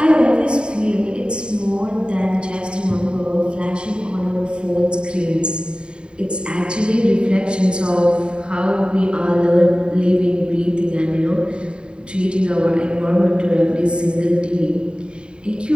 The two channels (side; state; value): left; late; 0.050 ms